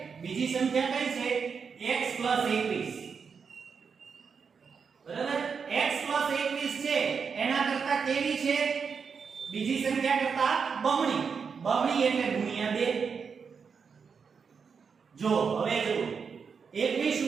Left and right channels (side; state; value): left; quieter; 5.9 dB